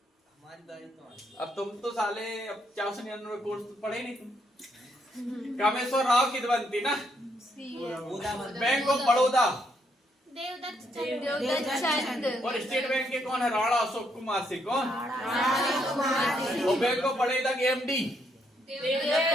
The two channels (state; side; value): normal; both; correlation 0.74